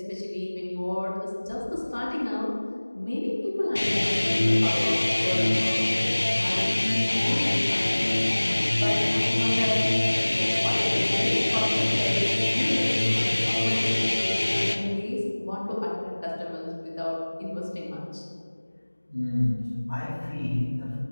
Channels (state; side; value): inverted; both; correlation -1.00